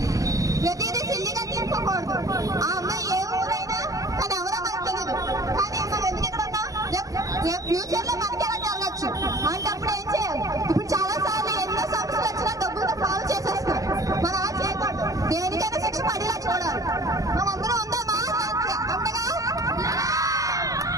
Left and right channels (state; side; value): late; left; 0.17 ms